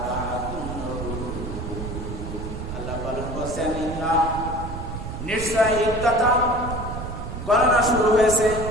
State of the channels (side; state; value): right; noise; rumble, 7 dB below the sound